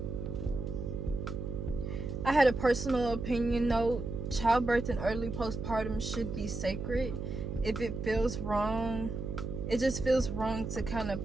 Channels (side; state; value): right; noise; hum, 5 dB below the sound